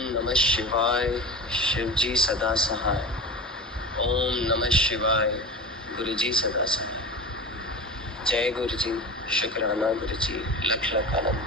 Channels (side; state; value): both; normal; correlation 0.31